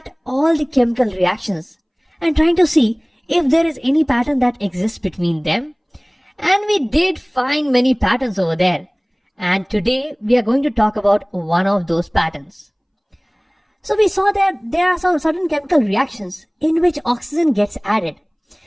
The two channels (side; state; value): both; identical; correlation 1.00